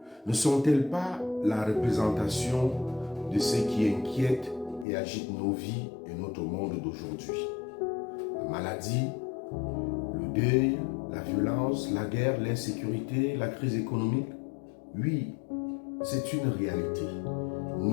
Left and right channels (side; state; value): right; drops out; at 4.9 s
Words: ne sont-elles pas la représentation de ce qui inquiète et agite nos vies et notre monde d'aujourd'hui? La maladie, le deuil, la violence, la guerre, l'insécurité, la crise économique, oui, c'est une réalité.